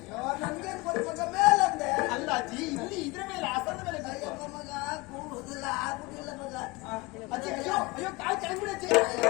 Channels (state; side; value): quieter; right; 23.3 dB